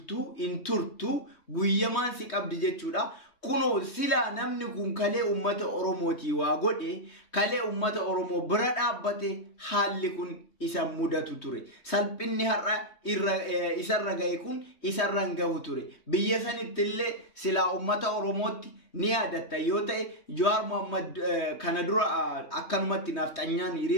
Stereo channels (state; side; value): late; right; 3.2 ms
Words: in turtu guyyamaan si qabdi jechuudha. Kunoo sila namni kun kalee ummata Oromooti waa godhe kalee ummata Oromoo bira dhaabbate haalli kun isa mudatu ture. Salphinni har'a isarra gahe kun isarra gahu ture. Biyya sanittillee sila ummata Oromootti ni yaadatta yoo ta'e Jawaar Mohammad kana dura akkanumatti nafxanyaan